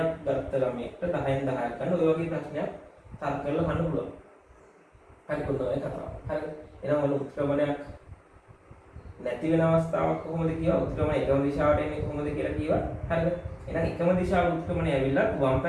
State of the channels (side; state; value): both; identical; correlation 1.00